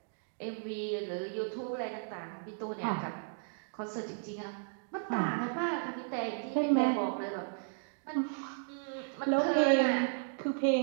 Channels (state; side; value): silent; left; digital silence